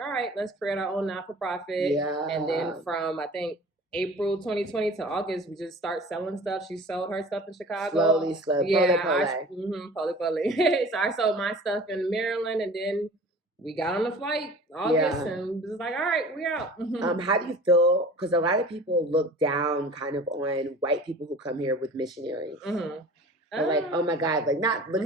right, let's create our own not-for-profit. And then from, I think, April 2020 to August, we just start selling stuff. She sold her stuff in Chicago. Slowly. Poly. So I sold my stuff in Maryland, and then we got on the flight August and was like, all right, we're out. How do you feel? Because a lot of people look down kind of on white people who come here with missionaries. Like, oh my God, like not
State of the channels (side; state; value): both; normal; correlation 0.42